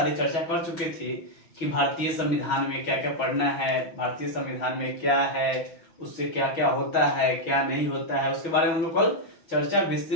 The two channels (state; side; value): late; right; 6.1 ms